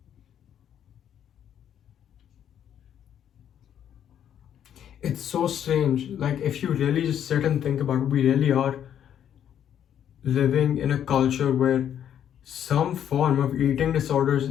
It's so strange. Like, if you really just sit and think about it, we really are living in a culture where some form of eating disorders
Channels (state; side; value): quieter; right; 9.7 dB